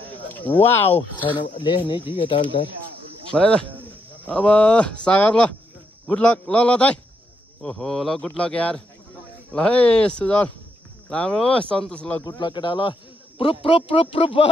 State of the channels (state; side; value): normal; both; correlation 0.79